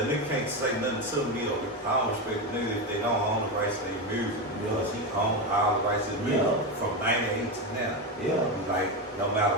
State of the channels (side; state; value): both; normal; correlation 0.14